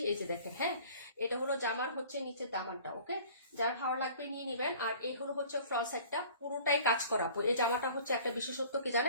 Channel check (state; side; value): inverted; both; correlation -0.48